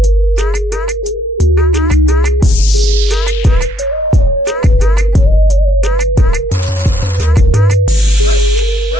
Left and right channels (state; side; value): normal; both; correlation 0.72